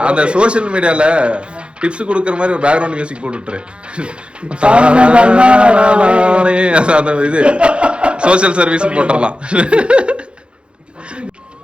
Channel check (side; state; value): left; late; 0.057 ms